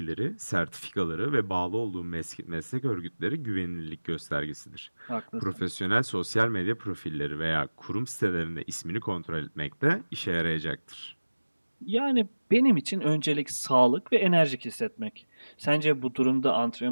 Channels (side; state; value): both; inverted; correlation -1.00